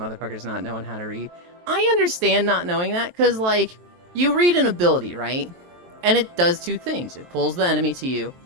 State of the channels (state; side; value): late; left; 23 ms